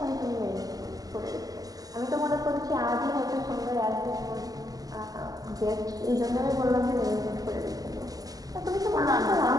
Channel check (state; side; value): late; left; 0.17 ms